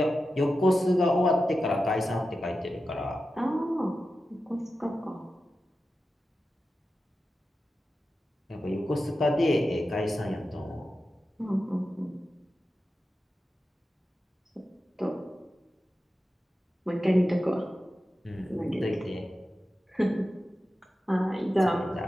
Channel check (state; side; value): normal; both; correlation 0.92